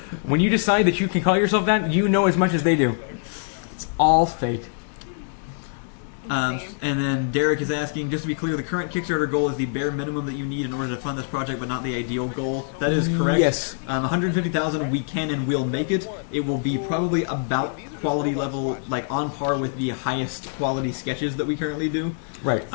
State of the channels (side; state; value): right; silent; digital silence